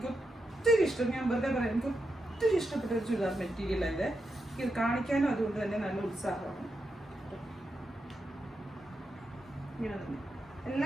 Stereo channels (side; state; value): both; normal; correlation 0.86